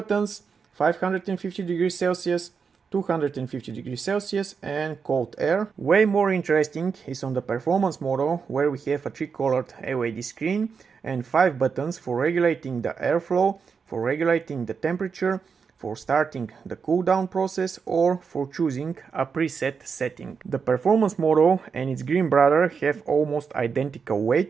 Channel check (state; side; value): quieter; left; 5.8 dB